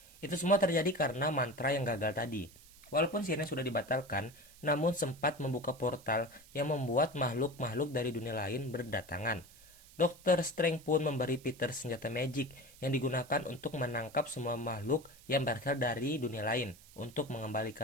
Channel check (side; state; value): right; noise; hiss, 22 dB below the sound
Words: Itu semua terjadi karena mantra yang gagal tadi. Walaupun sihirnya sudah dibatalkan, namun sempat membuka portal yang membuat makhluk-makhluk dari dunia lain berdatangan. Dr. Strange pun memberi Peter senjata magic yang digunakan untuk menangkap semua makhluk yang berasal dari dunia lain untuk